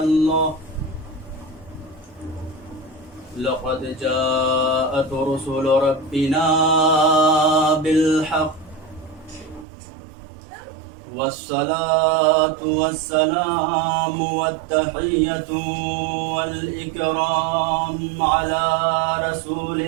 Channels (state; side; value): drops out; left; at 9.7 s